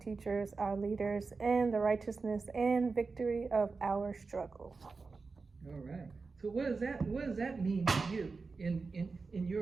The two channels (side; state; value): left; quieter; 4.3 dB